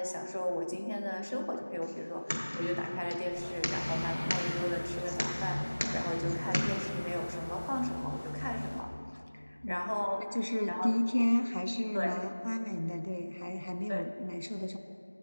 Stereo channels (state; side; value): inverted; both; correlation -1.00